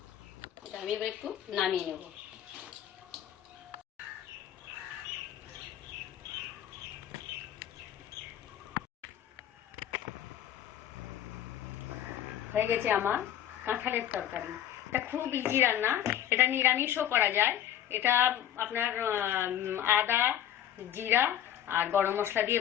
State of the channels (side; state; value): right; quieter; 11.0 dB